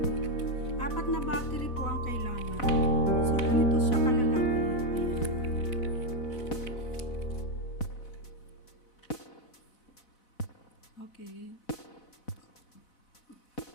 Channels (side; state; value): right; late; 4.0 ms